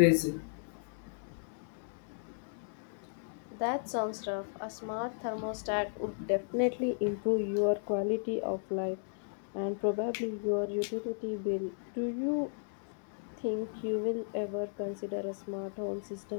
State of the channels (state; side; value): silent; right; digital silence